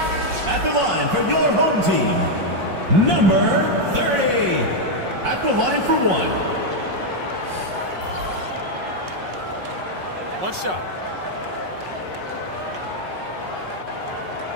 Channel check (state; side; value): late; left; 5.3 ms